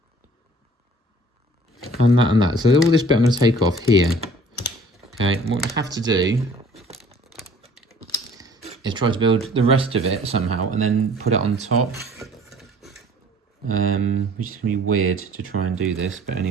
And that. So all this bit I'm going to take off here. Okay, what I have to do is try to build the rest of it somehow and then put it on top. Which is going to be weird to try and do this, but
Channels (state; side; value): normal; both; correlation 0.52